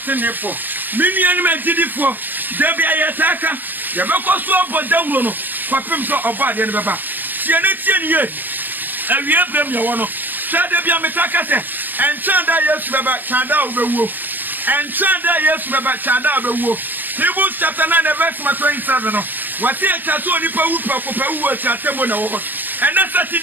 mini ani ma gidifo de bia yetaka ye be ko so bodawro no kwapem so oba de ne beba tie ne ye awie brem ye wono de bia metaka se enchanda Yesu beba chanda obewuo enchanda Yesu beba chanda obewuo Hebrews chapter 9 verse 27 no wati echa so onipa wu pakopawu ati atemo na wo and that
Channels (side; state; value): left; late; 0.088 ms